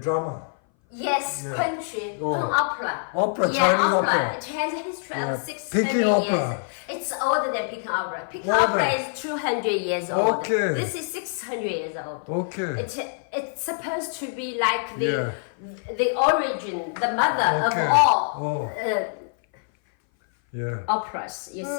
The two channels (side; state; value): right; silent; 58 dB below the other